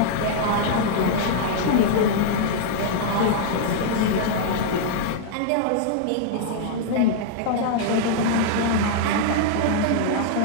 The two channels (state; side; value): different; both; correlation -0.01